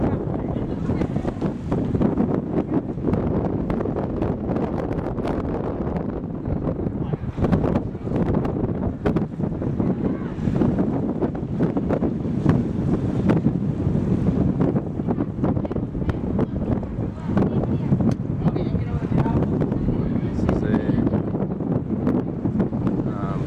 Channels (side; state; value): both; identical; correlation 1.00